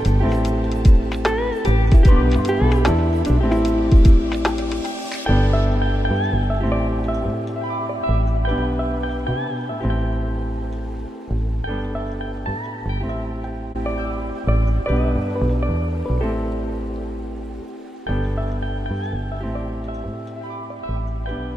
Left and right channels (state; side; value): normal; both; correlation 0.90